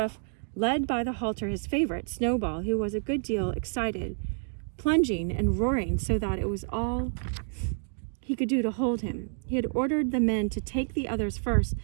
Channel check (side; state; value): left; silent; digital silence